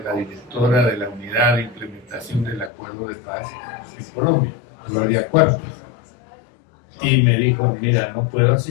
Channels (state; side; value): drops out; right; at 2.7 s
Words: la directora de la Unidad de Implementación del Acuerdo de Paz en Colombia, Gloria Cuerpos, y me dijo, mira, no puedo